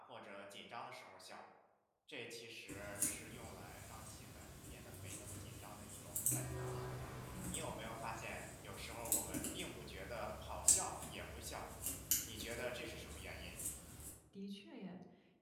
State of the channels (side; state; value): both; identical; correlation 1.00